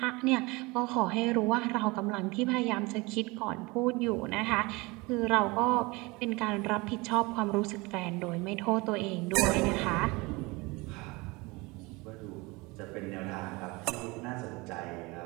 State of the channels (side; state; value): left; quieter; 24.5 dB